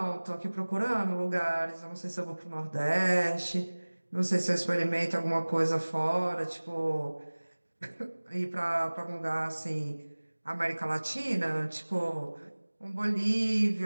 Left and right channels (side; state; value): both; inverted; correlation -1.00